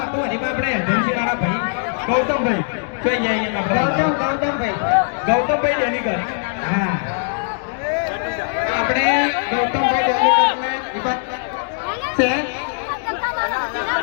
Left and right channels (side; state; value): right; silent; digital silence